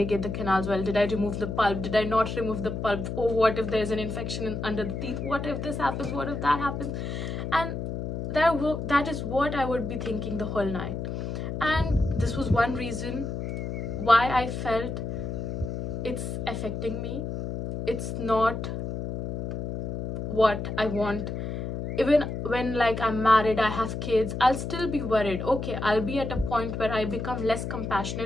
the canals well? Did I remove the pulp? Did I not remove the pulp? Oh, what if there's an infection under the teeth? What if this happens? What if that happens? And that is what I would be thinking the whole night. And this was one reason why I felt it's affecting me. It's not what I want. Even when like I'm married, I have kids, I'll still be worried. Okay, I'll be at a point where I become less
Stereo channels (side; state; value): left; noise; hum, 4 dB below the sound